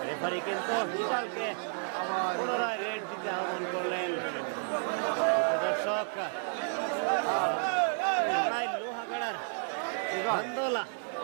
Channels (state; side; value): silent; left; 57 dB below the other